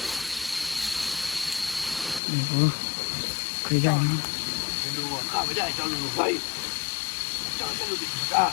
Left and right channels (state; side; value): drops out; right; at 2.2 s